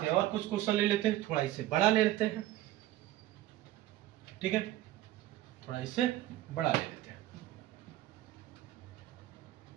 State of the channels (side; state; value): left; quieter; 14.6 dB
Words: हैं और कुछ क्वेश्चन ले लेते हैं, थोड़ा इससे बड़ा ले लेते हैं। ठीक है, थोड़ा इससे बड़ा ले लेते हैं।